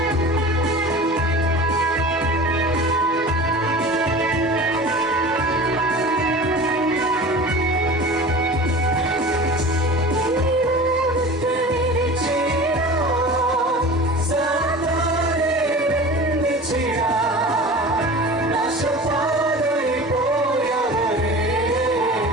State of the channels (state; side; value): normal; both; correlation 0.37